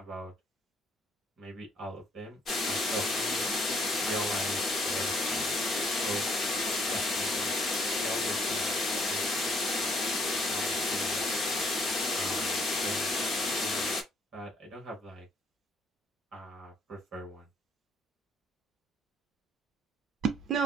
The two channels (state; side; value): normal; both; correlation 0.65